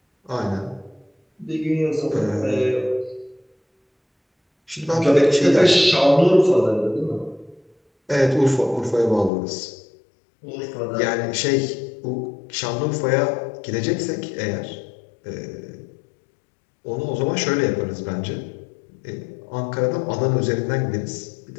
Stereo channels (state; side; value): drops out; right; at 9.3 s